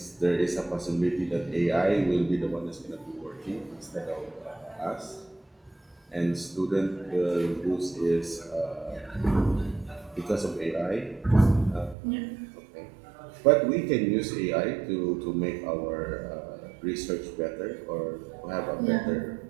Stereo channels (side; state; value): left; drops out; at 12.0 s